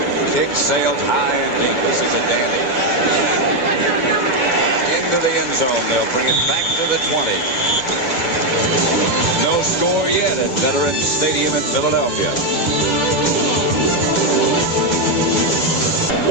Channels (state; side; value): late; right; 2.2 ms